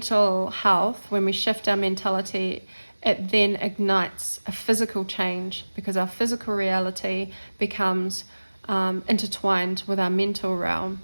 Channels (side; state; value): both; inverted; correlation -1.00